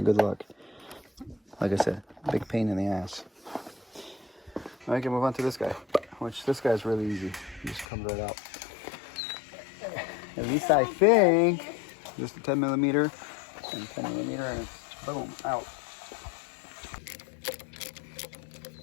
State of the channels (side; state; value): right; drops out; at 7.9 s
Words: good luck. Like I said, big pain in the ass. I can move on to this guy, which this guy's really easy. It just comes right out. At least I think. Just a 10 millimeter and 10 millimeter, and it's boom, out.